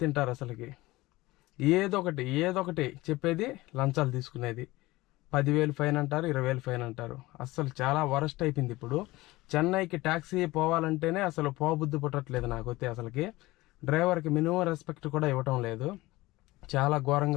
తింటారు. అసలుకి ఏదో ఒకటి చెప్పేది, లంచాలు తీసుకునేది. 10,000 ఫైన్ అంటారు, 20,000 ఫైన్ అంటారు. అసలు చాలా వరస్ట్ అయిపోయింది. ఇప్పుడు చెన్నైకి ట్యాక్సీ పోవాలంటేనే అసలు పోబుద్ధి పుట్టట్లేదు నాకైతే. అసలుకి డ్రైవర్కి మినిమం రెస్పెక్ట్ కూడా ఇవ్వటం లేదు. చాలా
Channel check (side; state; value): right; quieter; 19.7 dB